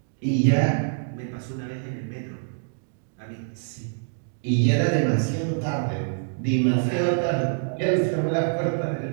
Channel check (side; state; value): left; silent; digital silence